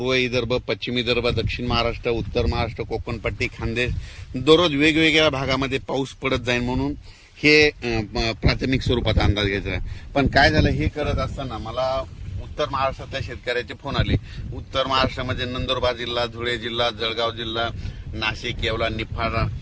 विदर्भ, पश्चिम विदर्भ, दक्षिण महाराष्ट्र, उत्तर महाराष्ट्र, कोकणपट्टी, खानदेश दररोज वेगवेगळ्या भागामध्ये पाऊस पडत जाईल म्हणून हे प्राथमिक स्वरूपात अंदाज घ्यायचा आहे. पण काय झालं, हे करत असताना मला उत्तर महाराष्ट्रातल्या शेतकऱ्याचे फोन आले. उत्तर महाराष्ट्रामध्ये नंदुरबार जिल्हा, धुळे जिल्हा, जळगाव जिल्हा, नाशिक, येवला, निफाड,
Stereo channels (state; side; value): identical; both; correlation 1.00